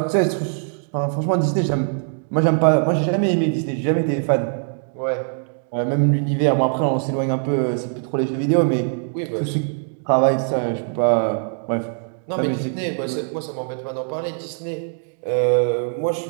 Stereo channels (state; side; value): silent; left; digital silence